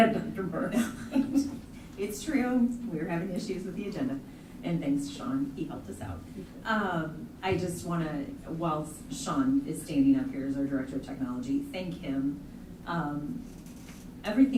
Dr. Burke. It's true. We were having issues with the agenda, and thanks to Sean, he helped us out. I just want to, while Sean is standing up here as our Director of Technology, thank him.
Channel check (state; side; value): identical; both; correlation 1.00